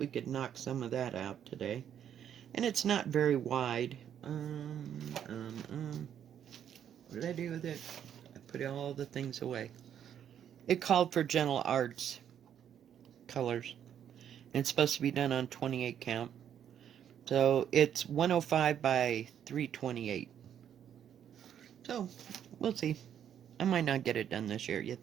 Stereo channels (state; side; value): quieter; left; 9.4 dB